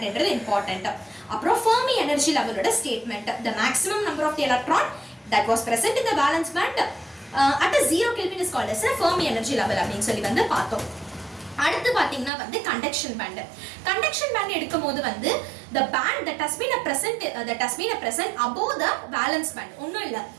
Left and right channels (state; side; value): drops out; left; at 12.3 s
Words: என்றது important. அப்புறம் Fermi energy level ஓட statement, the maximum number of the electron that was present in the valence band at a 0 Kelvin is called as a Fermi energy level அப்படின்னு சொல்லி வந்து பார்த்தோம். அடுத்து பாத்தீங்கன்னா வந்து கண்டக்ஷன் பேண்ட். கண்டக்ஷன் பேண்ட் எடுக்கும்போது வந்து the band that has been present above the valence band. ஒண்ணும் இல்ல,